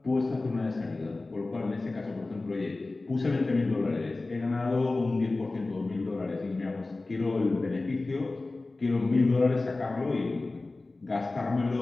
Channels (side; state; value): right; quieter; 3.2 dB